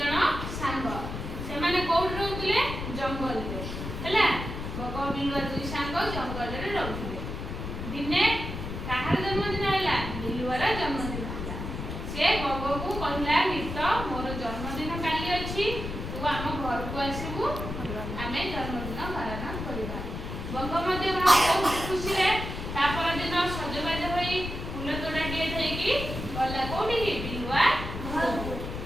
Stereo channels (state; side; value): noise; left; rumble, 6 dB below the sound